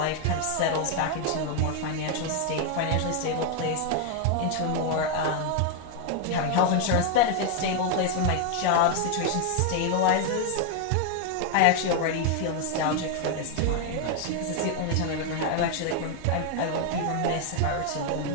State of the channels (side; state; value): both; different; correlation 0.00